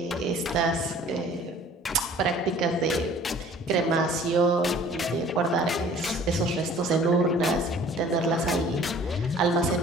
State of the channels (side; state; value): both; normal; correlation 0.51